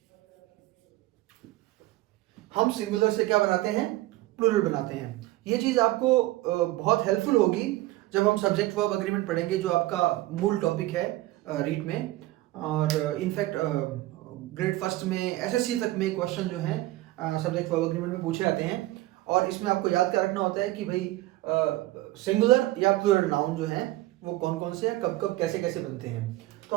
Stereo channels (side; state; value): left; quieter; 17.6 dB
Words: हम सिंगुलर से क्या बनाते हैं? प्लूरल बनाते हैं। ये चीज आपको बहुत हेल्पफुल होगी जब हम सब्जेक्ट वर्ब अग्रीमेंट पढ़ेंगे, जो आपका मूल टॉपिक है रीट में। और इनफैक्ट ग्रेड फर्स्ट में एसएससी तक में क्वेश्चन जो है सब्जेक्ट वर्ब अग्रीमेंट में पूछे जाते हैं। और इसमें आपको याद क्या रखना होता है कि भाई सिंगुलर या प्लूरल नाउन जो है वो कौन कौन से हैं, कब कब कैसे कैसे बनते हैं। तो